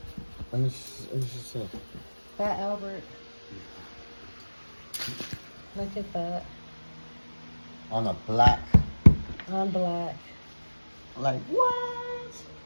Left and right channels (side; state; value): both; inverted; correlation -1.00